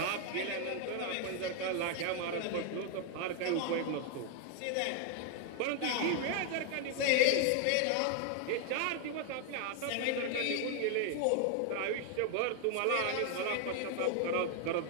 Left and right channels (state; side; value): different; both; correlation 0.00